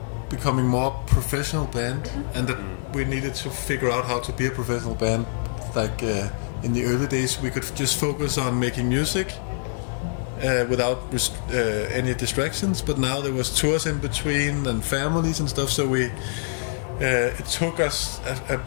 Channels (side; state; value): right; silent; 62 dB below the other